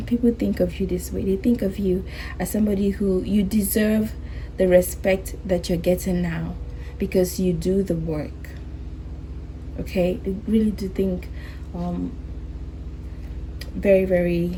people think of you this way. They think of you as somebody who you deserve the respect that you're getting now because you do the work. Okay, they really do think very,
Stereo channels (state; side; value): identical; both; correlation 1.00